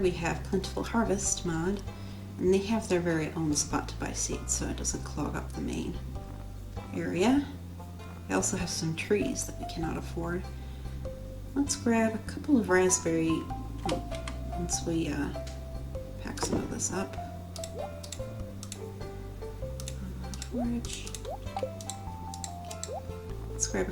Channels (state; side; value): identical; both; correlation 1.00